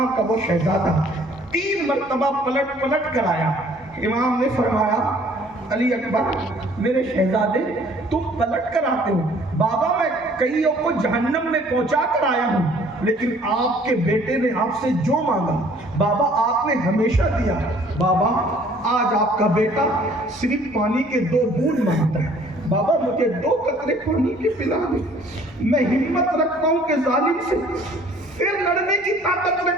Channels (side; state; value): both; normal; correlation 0.56